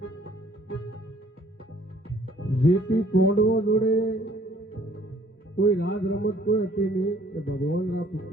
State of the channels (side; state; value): both; normal; correlation 0.59